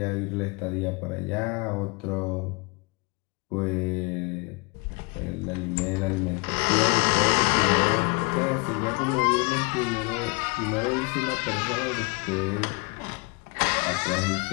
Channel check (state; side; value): quieter; right; 30.4 dB